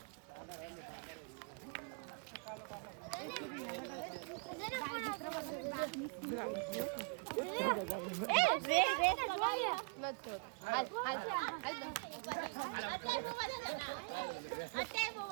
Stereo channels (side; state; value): left; quieter; 34.5 dB